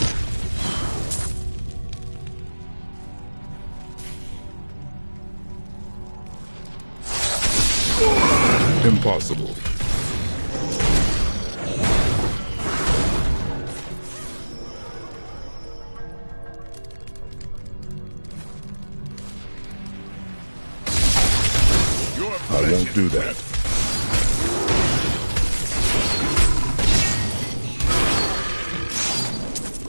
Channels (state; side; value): inverted; both; correlation -1.00